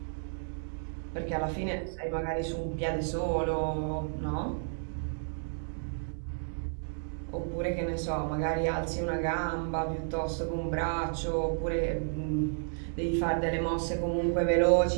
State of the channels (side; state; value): left; silent; digital silence